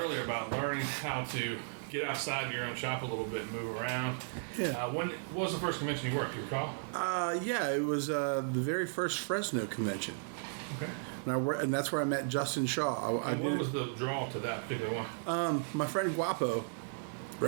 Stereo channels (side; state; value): left; silent; 54 dB below the other